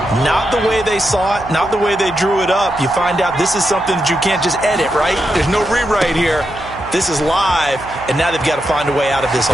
Not the way they saw it, not the way they drew it up. You find out this is something that you can't just edit, right? There's no rewrite here. This is live, and now they've got to find a way out of this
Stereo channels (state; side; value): noise; right; hum, 16 dB below the sound